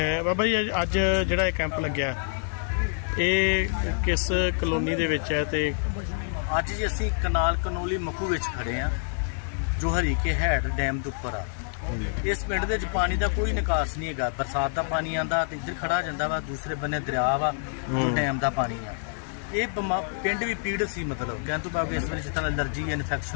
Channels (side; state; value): right; silent; digital silence